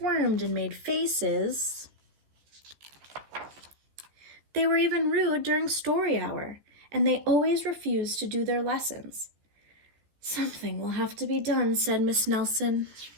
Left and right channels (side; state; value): left; late; 14 ms